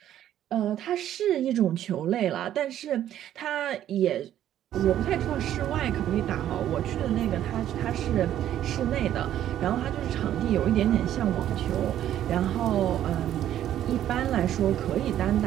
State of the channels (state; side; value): quieter; left; 11.6 dB